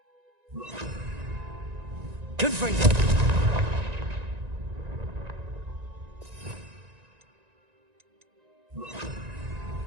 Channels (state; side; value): late; left; 1.9 ms